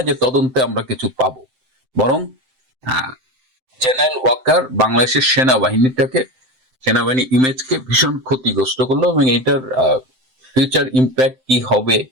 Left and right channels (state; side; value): late; left; 7.7 ms